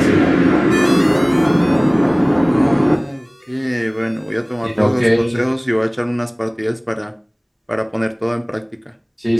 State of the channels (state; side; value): identical; both; correlation 1.00